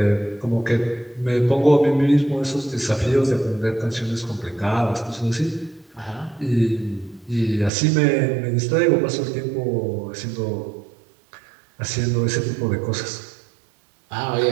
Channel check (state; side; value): drops out; left; at 7.7 s